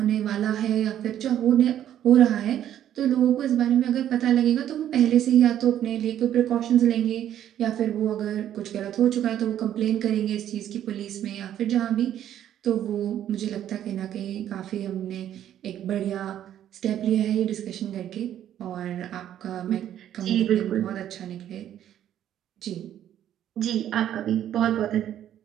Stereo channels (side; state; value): left; quieter; 11.0 dB